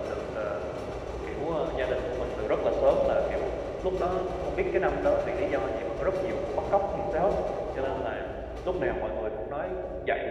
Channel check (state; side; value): identical; both; correlation 1.00